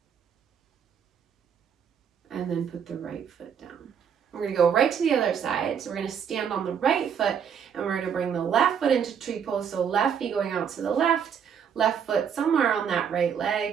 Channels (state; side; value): quieter; left; 7.7 dB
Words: And then put the right foot down. We're going to go right to the other side. So we're going to stand on the right foot, and we're going to bring the left foot into tree pose. So left knee going out to the left foot somewhere on that right